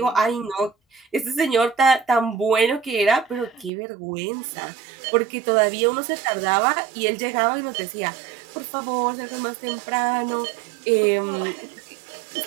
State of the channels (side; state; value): left; drops out; at 3.7 s